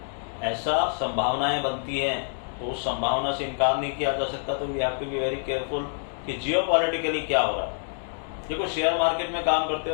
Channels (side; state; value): right; silent; digital silence